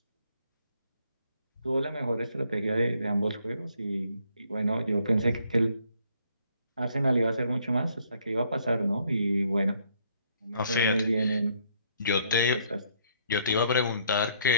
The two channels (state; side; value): inverted; both; correlation -0.67